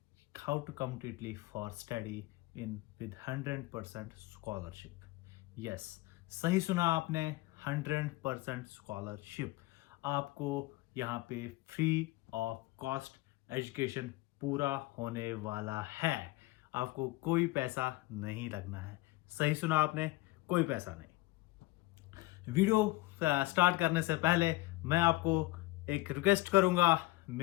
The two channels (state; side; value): quieter; right; 19.4 dB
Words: how to come to Italy for study in with 100% scholarship. Yes, सही सुना आपने, 100% स्कॉलरशिप। आपको यहाँ पे फ्री ऑफ कॉस्ट एजुकेशन पूरा होने वाला है। आपको कोई पैसा नहीं लगना है। सही सुना आपने, कोई पैसा नहीं। वीडियो स्टार्ट करने से पहले मैं आपको एक रिक्वेस्ट करूंगा,